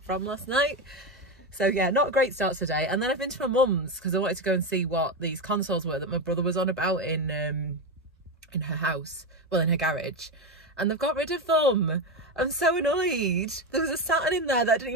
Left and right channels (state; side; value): normal; both; correlation 0.14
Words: from last night. So yeah, not a great start to the day. And then I've been to my mum's because I wanted to go and see what these consoles were that my brother was on about in her house, well, in her garage. And they've got rid of them. I'm so annoyed. There was a Saturn in there that I didn't